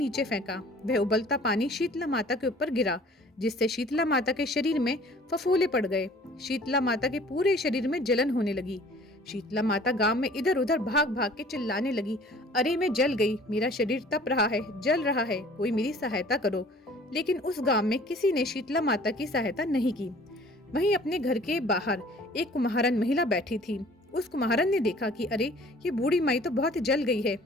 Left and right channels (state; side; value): normal; both; correlation 0.51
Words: फेंका। वह उबलता पानी शीतला माता के ऊपर गिरा, जिससे शीतला माता के शरीर में फफोले पड़ गए। शीतला माता के पूरे शरीर में जलन होने लगी। शीतला माता गांव में इधर उधर भाग भाग के चिल्लाने लगी, अरे मैं जल गई, मेरा शरीर तप रहा है, जल रहा है, कोई मेरी सहायता करो। लेकिन उस गांव में किसी ने शीतला माता की सहायता नहीं की। वहीं अपने घर के बाहर एक कुम्हारन महिला बैठी थी। उस कुम्हारन ने देखा कि अरे ये बूढ़ी माई तो बहुत जल गई है,